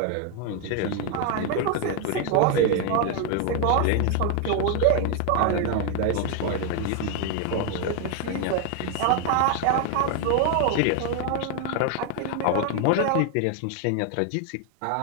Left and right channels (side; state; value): both; different; correlation 0.01